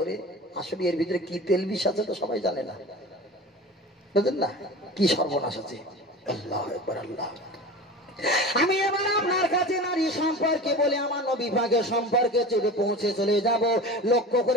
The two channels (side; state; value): both; normal; correlation 0.34